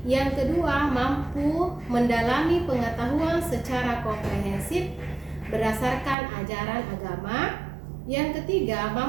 Yang kedua, mampu mendalami pengetahuan secara komprehensif berdasarkan ajaran agama. Yang ketiga,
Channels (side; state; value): left; drops out; at 6.2 s